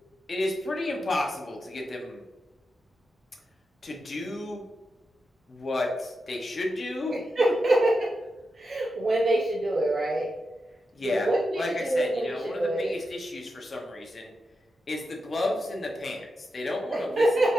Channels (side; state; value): both; normal; correlation 0.88